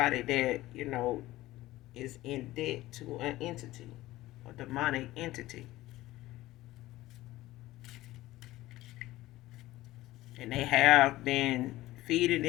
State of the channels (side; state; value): right; quieter; 17.0 dB